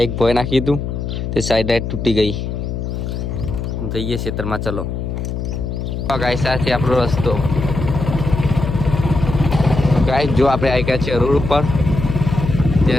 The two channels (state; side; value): noise; left; hum, 4 dB below the sound